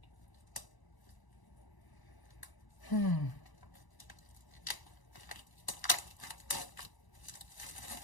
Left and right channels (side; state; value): right; late; 1.0 ms